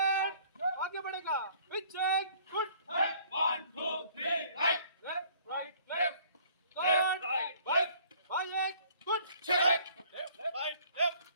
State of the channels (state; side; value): inverted; both; correlation -0.57